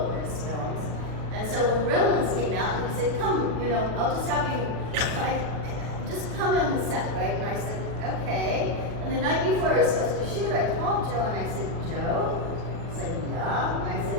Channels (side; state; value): left; late; 40 ms